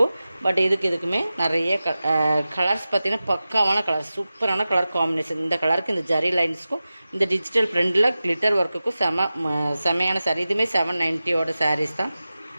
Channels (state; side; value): inverted; both; correlation -0.95